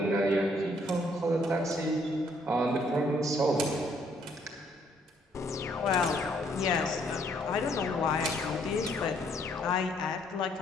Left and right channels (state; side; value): normal; both; correlation 0.67